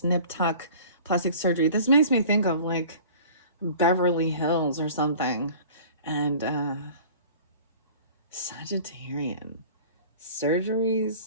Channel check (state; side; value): inverted; both; correlation -0.44